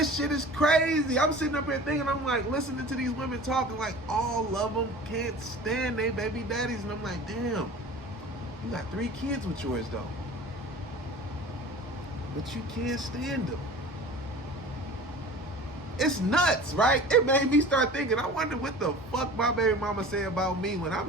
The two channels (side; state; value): both; normal; correlation 0.40